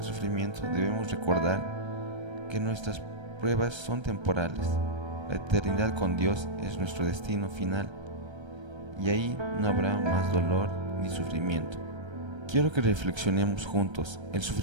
sufrimiento debemos recordar que nuestras pruebas son temporales. La eternidad con Dios es nuestro destino final y ahí no habrá más dolor ni sufrimiento. Quiero que reflexionemos juntos. El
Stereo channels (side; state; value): left; late; 1.3 ms